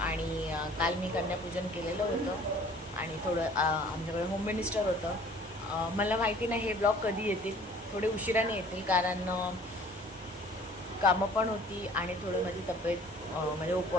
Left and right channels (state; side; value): normal; both; correlation 0.51